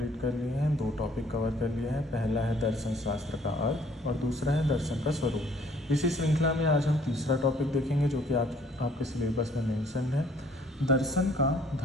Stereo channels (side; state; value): both; normal; correlation 0.60